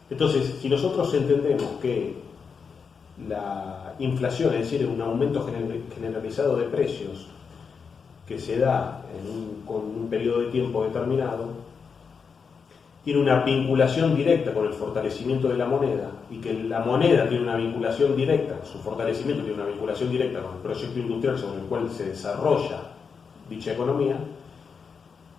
Entonces, si nosotros entendemos que la inflación, es decir, un aumento generalizado de precios que se da con un periodo de tiempo determinado, tiene una vinculación directa con el fortalecimiento de la moneda y que la moneda tiene una vinculación directa, su fortalecimiento tiene una vinculación directa con el proyecto industrial sobre el cual se desarrolla dicha economía,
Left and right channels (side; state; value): right; quieter; 5.8 dB